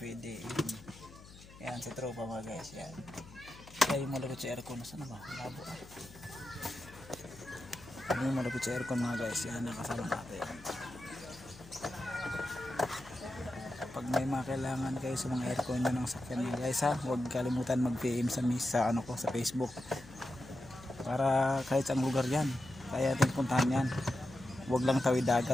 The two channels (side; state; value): left; noise; hum, 19 dB below the sound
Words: Yan si tropa mga guys, yan. Kaya yung malapit sa aircon, nasa na ba? Labo ah. Ano yung malapit sa aircon mga guys, yan nakasama natin. Pag may mga kailangan kayo sa mga aircon nyo ng sakyan mga guys ha, huwag kalimutan mag-PM sa ano ko sa Facebook para kahit saang lugar yan kaya ating puntahan yan. Huwag lang tawid